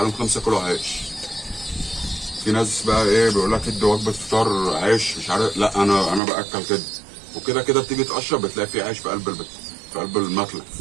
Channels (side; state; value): left; drops out; at 6.2 s